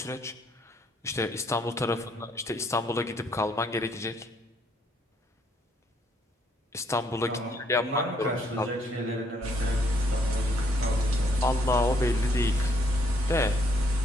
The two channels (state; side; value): normal; both; correlation 0.69